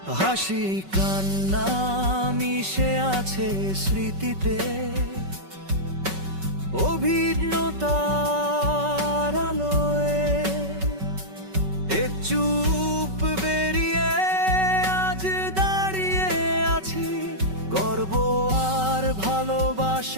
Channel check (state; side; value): late; left; 5.3 ms